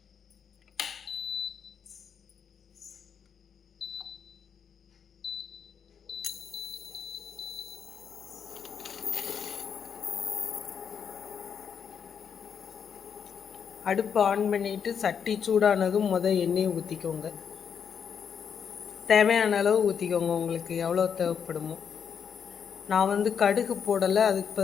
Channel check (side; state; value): right; quieter; 7.2 dB